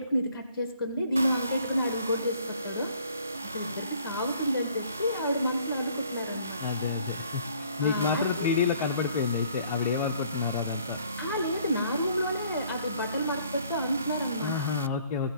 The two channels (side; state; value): both; inverted; correlation -0.59